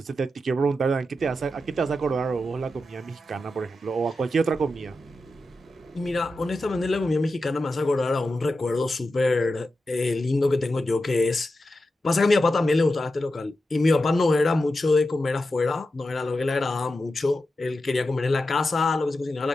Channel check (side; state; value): both; normal; correlation 0.90